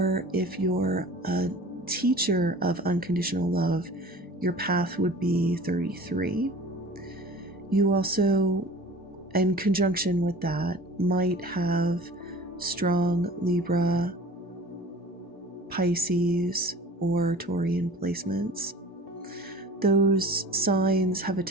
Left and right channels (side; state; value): both; normal; correlation 0.42